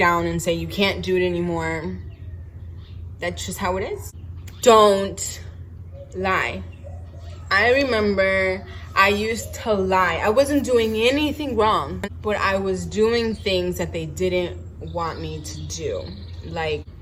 and say you can't do it anymore. That's just how it is. Don't lie. I remember I used to lie. I wasn't doing anything wrong, but I was doing things that they didn't want me to do. Like,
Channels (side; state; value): both; identical; correlation 1.00